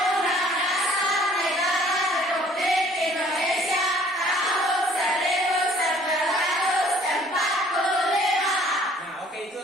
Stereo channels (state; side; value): normal; both; correlation 0.56